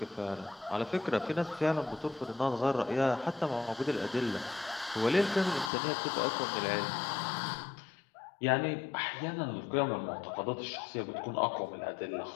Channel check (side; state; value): right; drops out; at 5.7 s